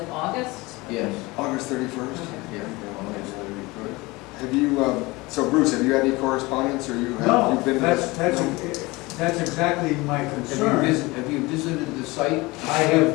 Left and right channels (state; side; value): quieter; right; 22.6 dB